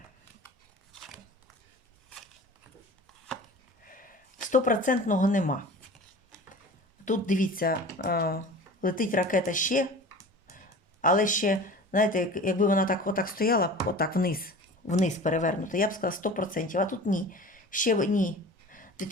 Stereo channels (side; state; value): both; normal; correlation 0.39